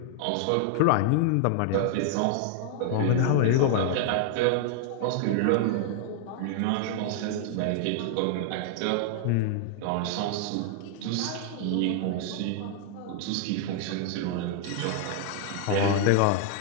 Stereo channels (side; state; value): both; different; correlation 0.00